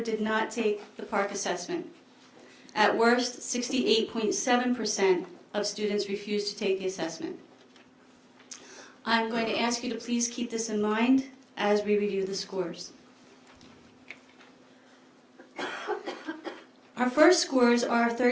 did not take the park assessment. At worst, 68.7% of students refused to take the assessment. I'm going to ask you to please keep this in mind as we review the scores. Our first scores are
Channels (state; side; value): identical; both; correlation 1.00